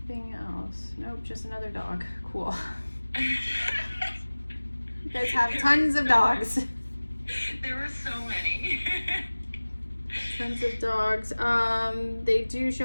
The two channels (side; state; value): both; inverted; correlation -1.00